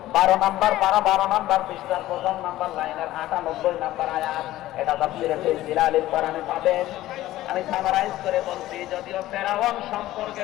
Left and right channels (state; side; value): quieter; right; 15.4 dB